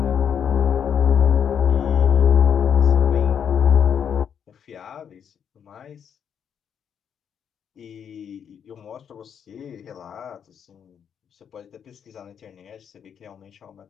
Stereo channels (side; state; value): right; quieter; 8.0 dB